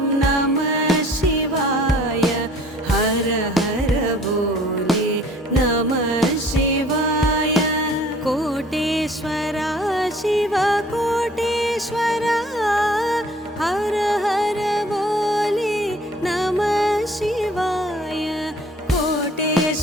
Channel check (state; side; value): normal; both; correlation 0.53